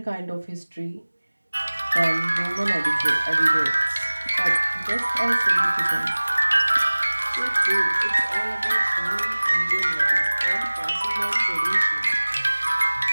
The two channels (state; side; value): inverted; both; correlation -1.00